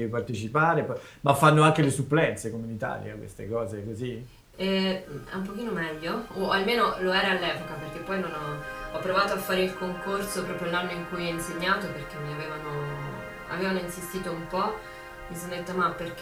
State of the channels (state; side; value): identical; both; correlation 1.00